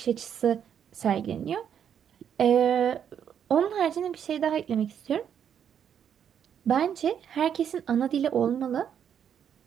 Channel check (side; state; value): left; quieter; 8.6 dB